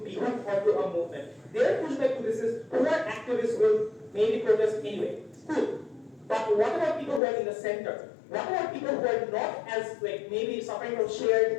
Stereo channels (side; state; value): right; drops out; at 7.2 s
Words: be hooked onto a movement. Their pushback to this is poor activists will maybe protest anyway. Cool. But what about people who are in the center? What about people who are not as maybe suffering from